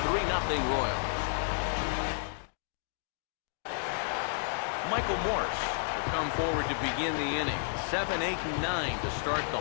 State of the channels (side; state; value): right; silent; digital silence